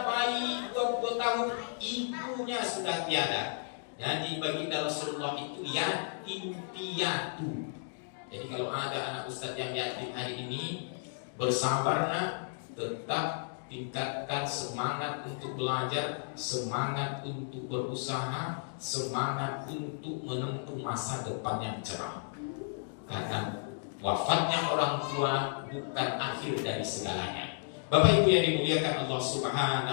bayi 20 tahun, ibunya sudah tiada. Jadi baginda Rasulullah itu yatim piatu. Jadi kalau ada anak ustadz yang yatim hari ini, bersabarlah, tetap tingkatkan semangat untuk belajar, semangat untuk berusaha, semangat untuk menempuh masa depan yang cerah. Karena wafatnya orang tua bukan akhir dari segalanya. Bapak Ibu yang dimuliakan Allah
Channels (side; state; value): right; silent; digital silence